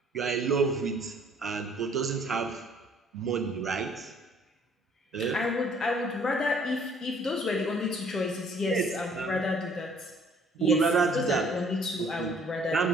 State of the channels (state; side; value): normal; both; correlation 0.59